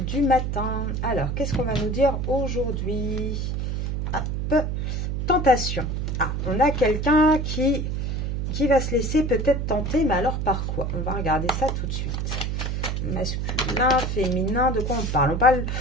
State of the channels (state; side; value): noise; right; hum, 1 dB below the sound